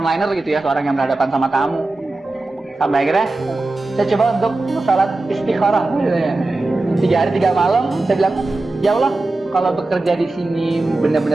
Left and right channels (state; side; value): quieter; left; 3.1 dB